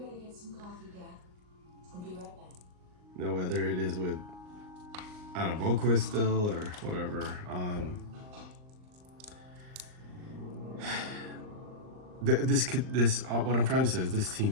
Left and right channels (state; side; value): late; left; 39 ms